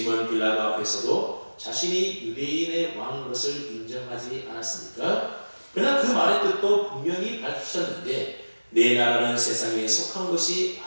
빌라도 앞에서도 자신이 유대인의 왕인 것을 인정하지 않았습니까? 그러나 그 말의 뜻도 분명히 밝히셨는데 내 나라는 세상에 속한 것이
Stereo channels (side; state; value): both; inverted; correlation -1.00